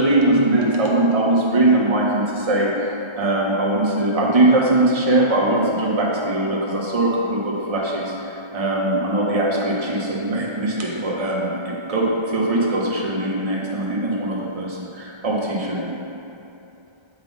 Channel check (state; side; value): late; left; 1.3 ms